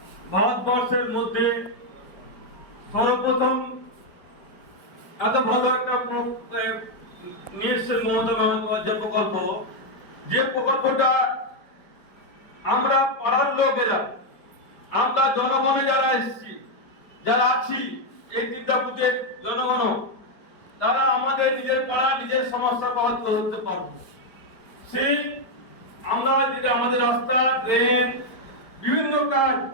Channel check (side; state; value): right; late; 4.7 ms